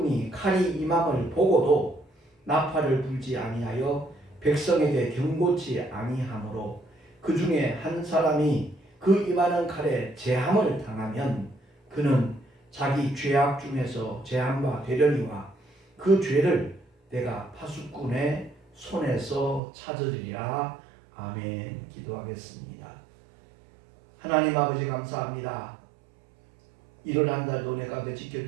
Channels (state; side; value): drops out; left; at 19.6 s